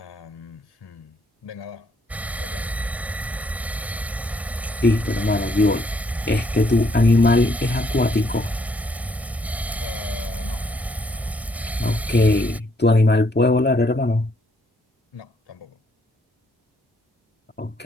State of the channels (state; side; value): normal; both; correlation 0.70